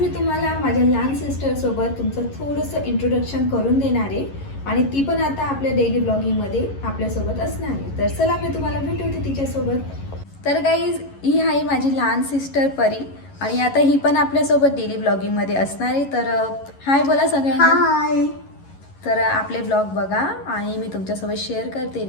तुम्हाला माझ्या लहान सिस्टरसोबत तुमचं थोडंसं इंट्रोडक्शन करून देणार आहे. आणि ती पण आता आपल्या डेली ब्लॉगिंगमध्ये आपल्यासोबत असणार आहे. तर चला मी तुम्हाला भेटवते तिच्यासोबत. तर गाईज, ही आहे माझी लहान सिस्टर परी आणि आता ही पण आपल्यासोबत डेली ब्लॉगिंगमध्ये असणार आहे. तर हाय बोला सगळ्यांना. हाय. तर आपले ब्लॉग बघा आणि मी तुमच्यासोबत शेअर करते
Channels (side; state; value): right; late; 11 ms